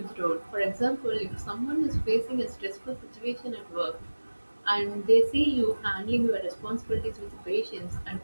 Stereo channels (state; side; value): inverted; both; correlation -1.00